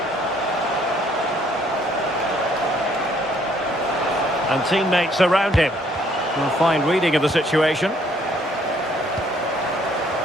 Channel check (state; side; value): normal; both; correlation 0.64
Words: And teammates around him. A fine reading of the situation.